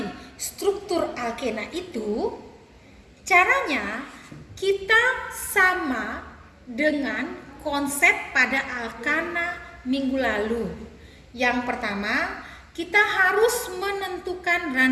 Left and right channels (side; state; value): both; identical; correlation 1.00